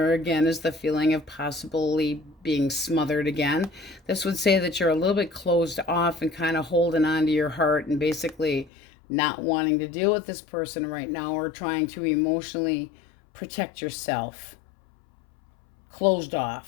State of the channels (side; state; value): right; drops out; at 8.7 s